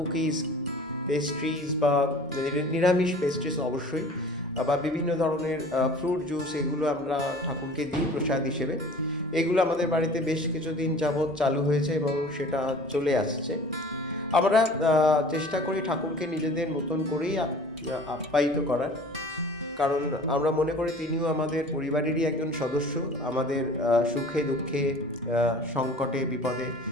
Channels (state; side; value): normal; both; correlation 0.45